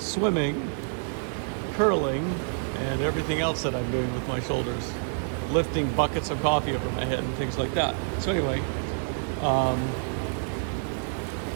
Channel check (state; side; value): silent; left; 60 dB below the other